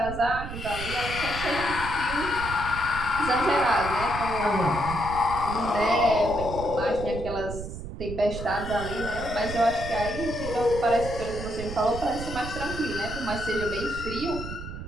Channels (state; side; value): noise; right; rumble, 8 dB below the sound